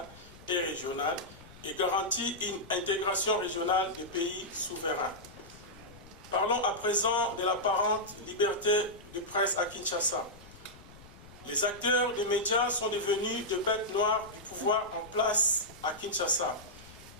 et régionale et garantir une intégration régionale des pays souverains. Parlons à présent de l'apparente liberté de presse à Kinshasa. Les acteurs des médias sont devenus des bêtes noires du pouvoir en place à Kinshasa.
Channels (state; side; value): noise; left; rumble, 20 dB below the sound